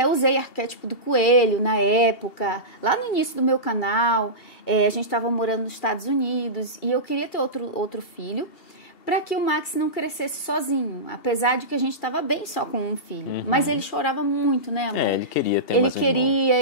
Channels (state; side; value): late; right; 2.7 ms